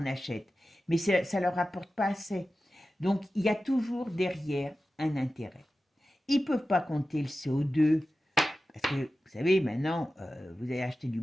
achète, mais ça ne leur rapporte pas assez. Donc il y a toujours derrière un intérêt. Ils ne peuvent pas compter le CO2, parce que vous savez, maintenant, vous allez acheter du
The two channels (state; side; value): normal; both; correlation 0.94